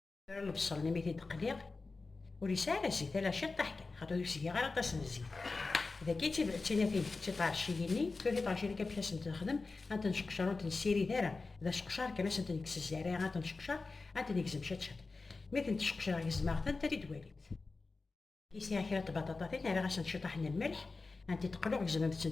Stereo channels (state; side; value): quieter; right; 3.9 dB